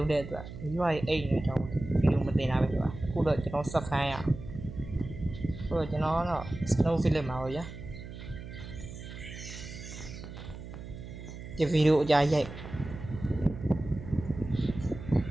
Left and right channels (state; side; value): noise; right; hum, 11 dB below the sound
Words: ံးတဲ့အတွက်မိဘရဲ့အိတ်နေကြောင်းဗီဒီယိုမတင်တာပဲဖြစ်ပါအခုတော့ကျွန်တော်ဆက်ခိုင်းရဆိုတော့ကျွန်တော်ကတော့ snow film မှာပေါ့ဗျာဒီဗီဒီယိုအကြိုက်ရိုက်